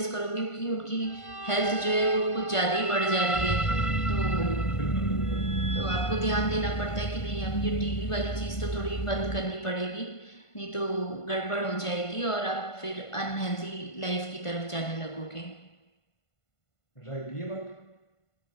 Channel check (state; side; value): late; right; 1.5 ms